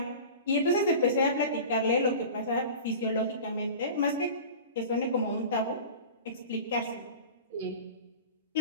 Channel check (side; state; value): both; inverted; correlation -0.36